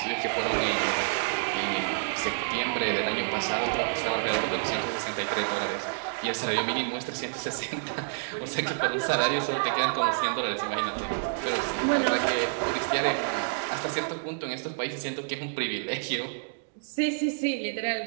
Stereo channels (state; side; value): silent; left; digital silence